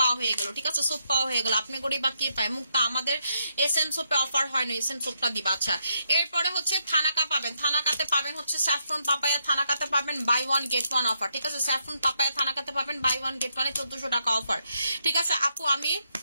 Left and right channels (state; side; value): inverted; both; correlation -0.78